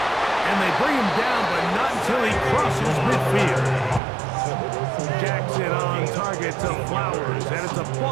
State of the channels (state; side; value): drops out; left; at 4.0 s